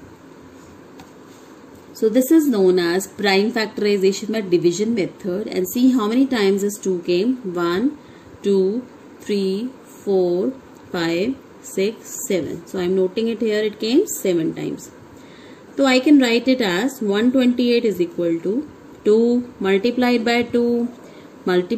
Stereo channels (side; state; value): both; identical; correlation 1.00